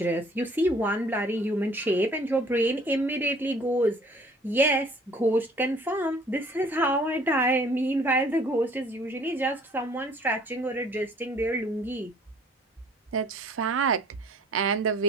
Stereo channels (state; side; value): normal; both; correlation 0.54